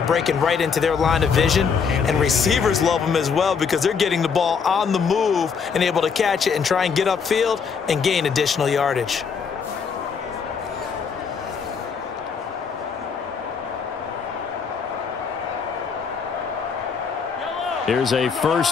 breaking right into their line of vision, and receivers love them as well because they're getting the ball on the move and able to catch it and try and get upfield and gain additional yardage. Here's a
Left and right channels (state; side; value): quieter; right; 6.1 dB